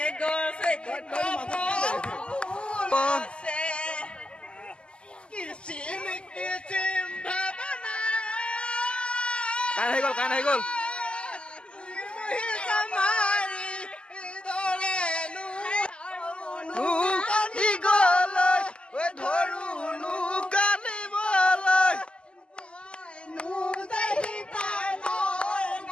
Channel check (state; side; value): late; right; 0.052 ms